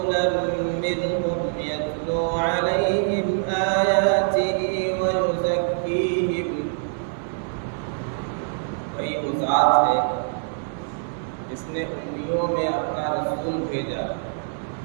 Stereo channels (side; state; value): left; silent; digital silence